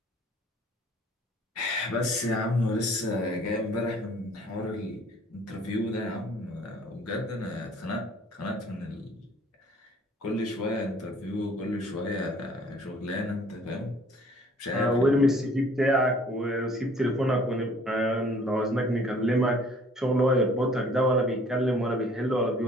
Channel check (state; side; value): normal; both; correlation 0.55